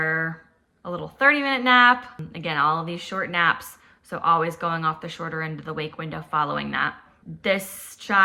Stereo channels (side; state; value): both; identical; correlation 1.00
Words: little 30-minute nap. Again, all of these short naps, so always going off the shorter end of the wake window following that. This